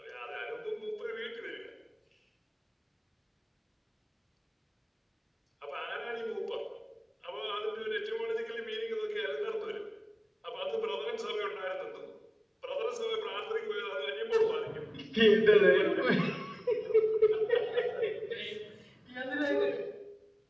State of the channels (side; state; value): both; identical; correlation 1.00